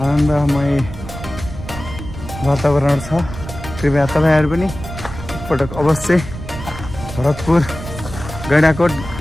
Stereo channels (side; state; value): right; noise; rumble, 11 dB below the sound